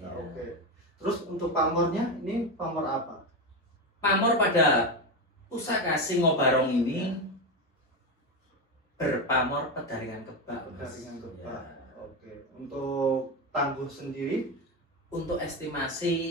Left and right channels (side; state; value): both; normal; correlation 0.15